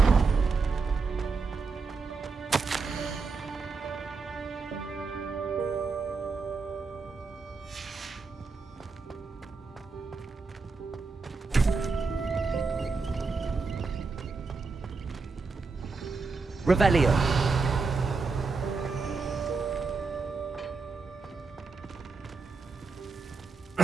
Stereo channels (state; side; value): quieter; left; 4.4 dB